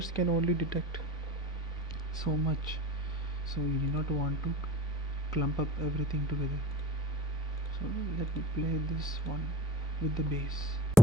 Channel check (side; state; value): both; normal; correlation 0.35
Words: can only detect so much. So you do not want to clump up everything together. So let me play this one with the bass.